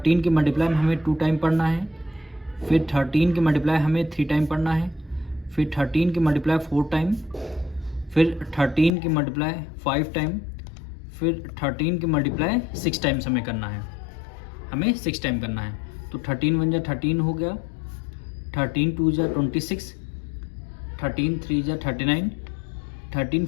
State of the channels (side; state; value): right; drops out; at 8.9 s